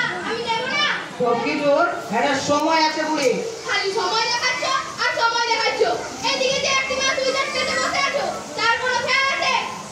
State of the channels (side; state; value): both; identical; correlation 1.00